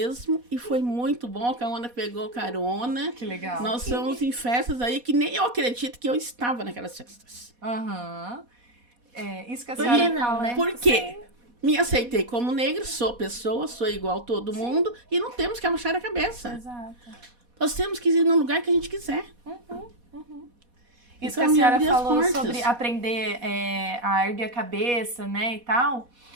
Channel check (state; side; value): late; left; 4.1 ms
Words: e foi muito bom. A Caona pegou carona. Que legal. Nós fomos em festas aí que nem eu acredito que eu estava naquelas festas. Isso que a Por senhora que não, falou. né? Por quê? Me aceitei como negra, sou pessoa, sou igual a todo mundo, e não temos que abaixar a cabeça. Exato. Nós temos que ir no lugar que a gente quiser. Isso Então, que a me senhora abrir as falou portas. sobre aprender a erguer a cabeça, né, e tal.